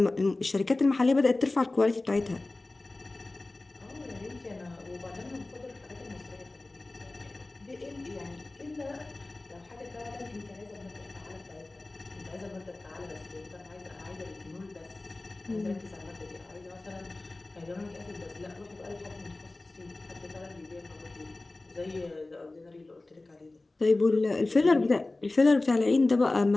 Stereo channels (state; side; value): quieter; right; 3.0 dB